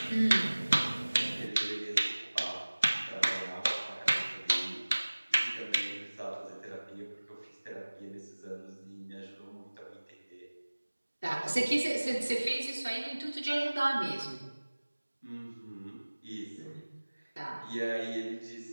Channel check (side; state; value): both; inverted; correlation -1.00